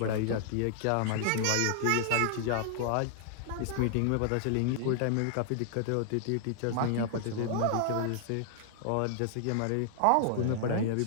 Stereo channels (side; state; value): both; different; correlation -0.01